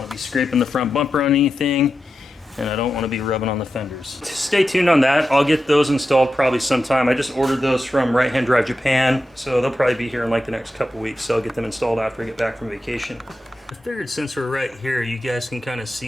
to be scraping the front bumper on anything, and I don't want to be rubbing on the fenders. Stay tuned on that. I'll get those installed probably sometime. I just ordered those from Right Hand Drive Japan, so they'll probably be here in like the next couple weeks. So I'll get them installed after I get back from vacation. I figured since we're right here, you guys can kind of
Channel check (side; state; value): both; normal; correlation 0.90